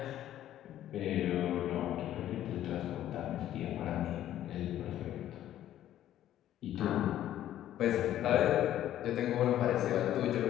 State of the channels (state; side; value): quieter; right; 12.2 dB